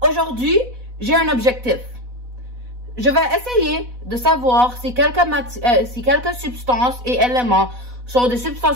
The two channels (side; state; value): left; late; 4.1 ms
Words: Aujourd'hui, j'ai un objectif. Je vais essayer de savoir si quelques substances et éléments sont des